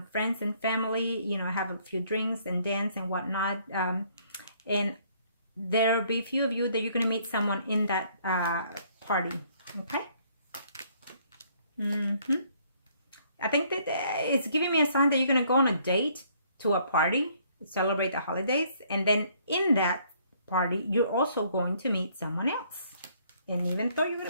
friends and family, you know, have a few drinks and dance and whatnot. And there'll be a few of you that you're going to meet someone in that party, okay? I think that it's giving me a sign that you're going to go on a date to a party, celebrate the holidays, and then in that party, you're also going to meet someone else. And even though you're going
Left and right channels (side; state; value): both; inverted; correlation -0.64